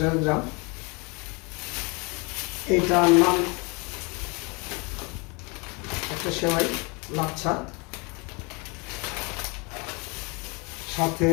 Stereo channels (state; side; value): quieter; right; 30.1 dB